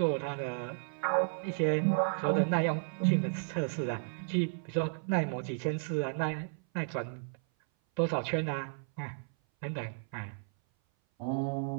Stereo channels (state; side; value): silent; left; 56 dB below the other